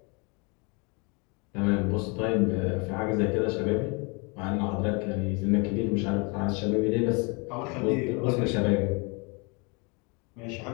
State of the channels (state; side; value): quieter; right; 31.1 dB